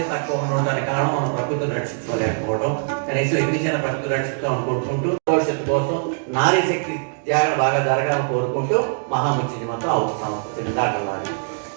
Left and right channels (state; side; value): silent; left; digital silence